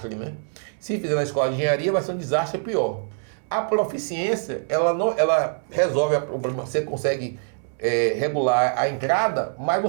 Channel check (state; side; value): silent; left; 63 dB below the other